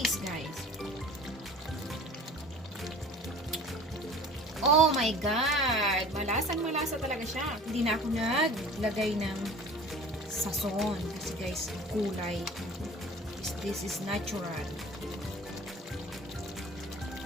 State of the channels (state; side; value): normal; both; correlation 0.43